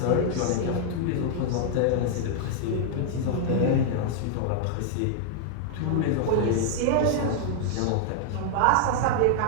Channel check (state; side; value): different; both; correlation -0.01